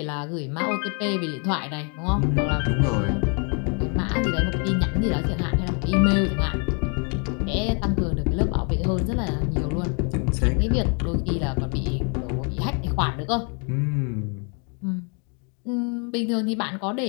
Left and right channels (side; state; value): right; quieter; 37.9 dB